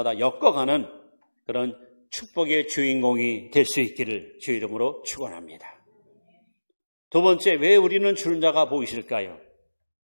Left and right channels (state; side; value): inverted; both; correlation -1.00